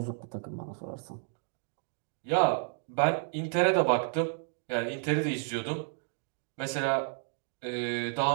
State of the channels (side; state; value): left; silent; 57 dB below the other